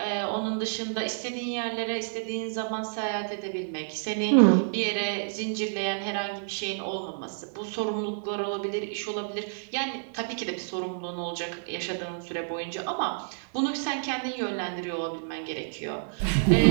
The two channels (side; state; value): left; silent; digital silence